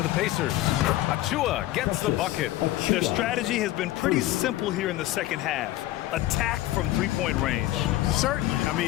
the Pacers. Achua gets the bucket. Their strategy has been pretty simple here in the second half. Attack from three-point range. Certainly. I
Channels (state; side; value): quieter; right; 15.5 dB